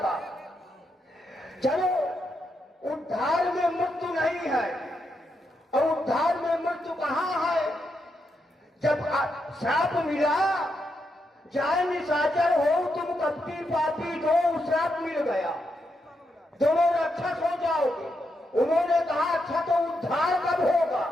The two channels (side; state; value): both; normal; correlation 0.82